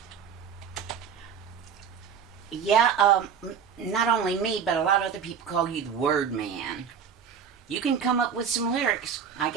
Yeah, not only me, but a lot of other people call you the word man. You can come up with some lyrics. I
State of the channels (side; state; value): left; quieter; 7.1 dB